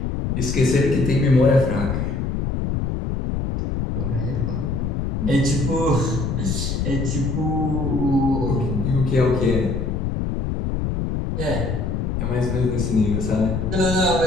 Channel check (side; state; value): left; noise; rumble, 1 dB below the sound